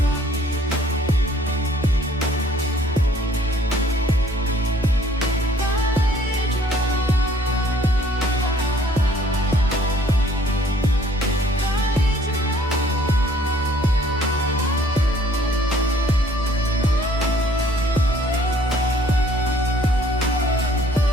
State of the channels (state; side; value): normal; both; correlation 0.59